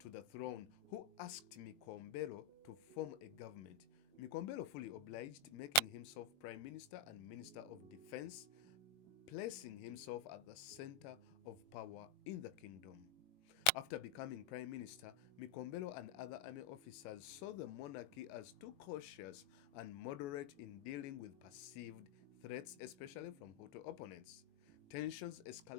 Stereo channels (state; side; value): late; right; 21 ms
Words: the throne, who asked Micombero to form a government. Micombero fully obliged, making himself Prime Minister and Minister of Defense, placing himself at the center of power in the kingdom. After becoming Prime Minister, Micombero and other army officers saw the monarchy as too cautious and moderate in dealing with perceived threats, especially from Hutu opponents. Tensions